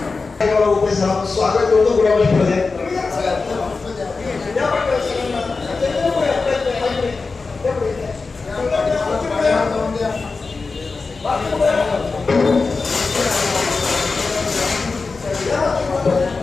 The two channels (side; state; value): right; quieter; 4.2 dB